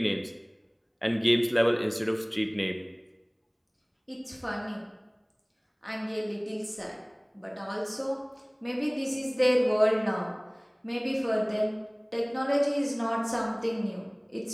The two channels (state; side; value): identical; both; correlation 1.00